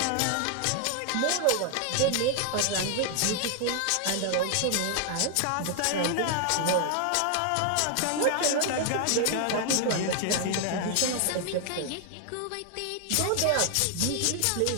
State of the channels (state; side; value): different; both; correlation 0.00